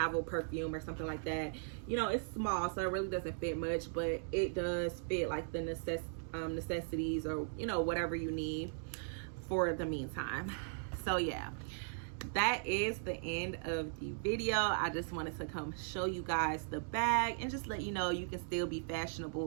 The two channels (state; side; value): silent; left; digital silence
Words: perfume or something like that. You know, it's small, so it really doesn't fit much, but it does fit like the necessities, or, you know, whatever you need for the meantime. So yeah, that is the end of the video. I just wanted to come show you guys the bag and just let you know you can still be